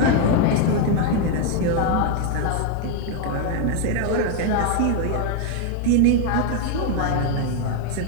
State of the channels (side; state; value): both; different; correlation 0.01